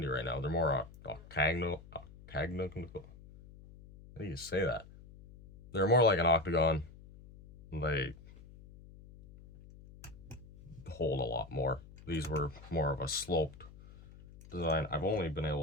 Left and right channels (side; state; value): left; noise; hum, 20 dB below the sound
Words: right now. They're more octagonal. How do you say that? They're more like an octagon. They hold a lot more. These were more of a sloped design. I've only been